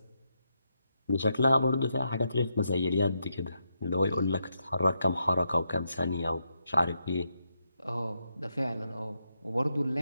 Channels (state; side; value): inverted; both; correlation -0.82